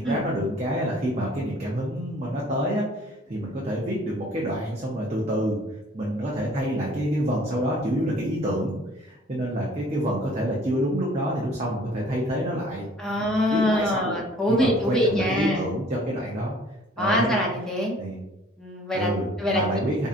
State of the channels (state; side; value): normal; both; correlation 0.54